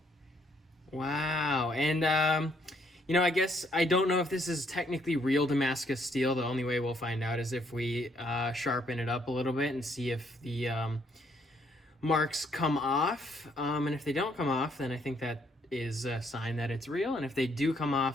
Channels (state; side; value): normal; both; correlation 0.69